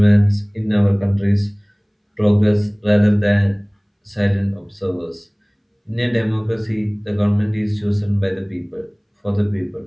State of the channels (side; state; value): both; identical; correlation 1.00